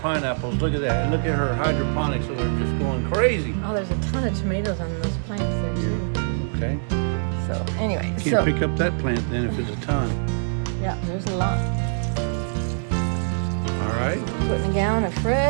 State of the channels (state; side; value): silent; left; digital silence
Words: pineapples. Look at that. And look at her hydroponics, so they're just going crazy. Oh, there's a ton of tomatoes on those plants there, too. Okay. So, anyway. Can't pick up that plant then if it's a ton. Yeah, there's a lot. All right. Putting a gallon of